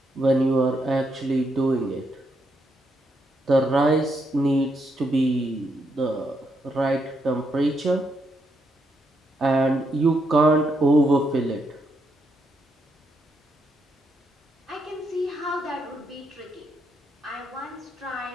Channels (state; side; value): normal; both; correlation 0.79